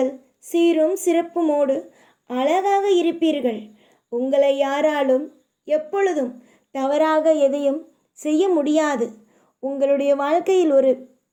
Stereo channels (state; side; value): identical; both; correlation 1.00